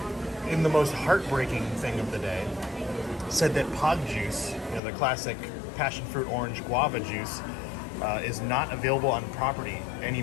in the most heartbreaking thing of the day, said that pog juice, the classic passion fruit orange guava juice, is not available on property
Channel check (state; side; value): drops out; right; at 4.8 s